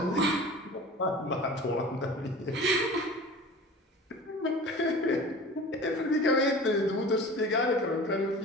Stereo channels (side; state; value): both; normal; correlation 0.39